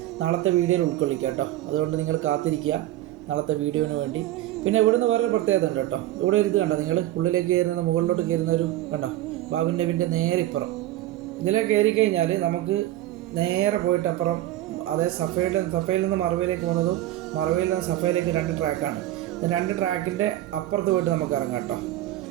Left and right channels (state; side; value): quieter; left; 14.5 dB